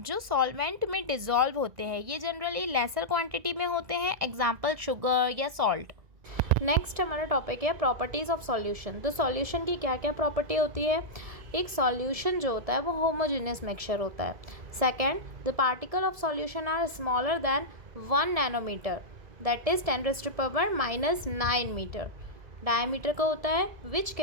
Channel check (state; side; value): late; left; 1.7 ms